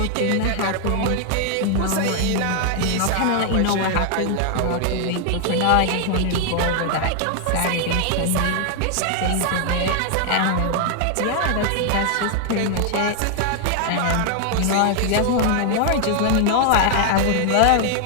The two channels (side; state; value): both; different; correlation 0.00